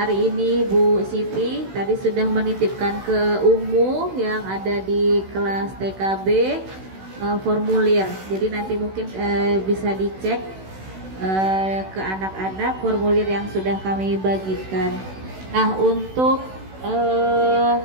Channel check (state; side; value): late; left; 16 ms